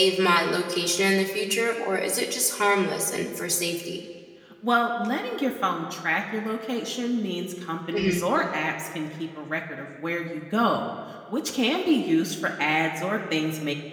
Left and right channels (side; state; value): both; identical; correlation 1.00